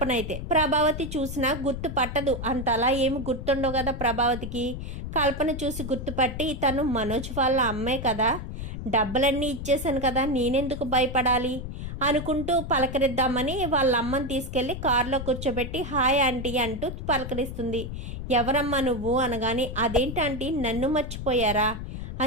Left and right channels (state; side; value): noise; left; rumble, 7 dB below the sound